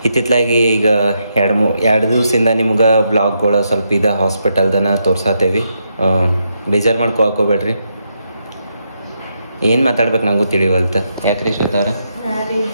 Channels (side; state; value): both; inverted; correlation -0.81